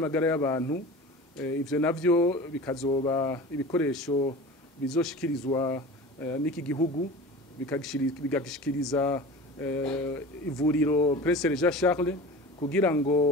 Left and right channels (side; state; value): both; normal; correlation 0.36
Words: y'abantu. Ivyo navyo bikazoba ibikoresho bizoshikirizwa n'iki gihugu bigashikiriza ivuriro Prince Jean Charles kugira